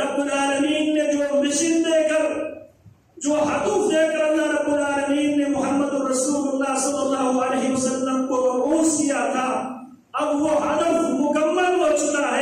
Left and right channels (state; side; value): identical; both; correlation 1.00